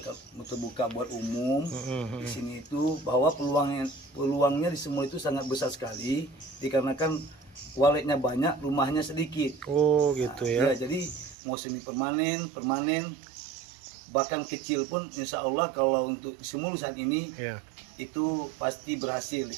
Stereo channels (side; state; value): left; drops out; at 11.4 s